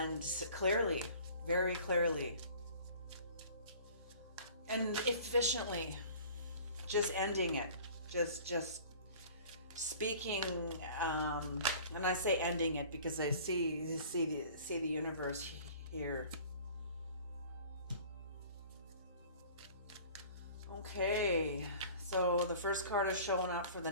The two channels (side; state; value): both; inverted; correlation -0.46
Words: clearly, very clearly, and efficiently, just ending it, just speaking. And I say ending it because I see the universe here. Okay, so the first card is showing up for the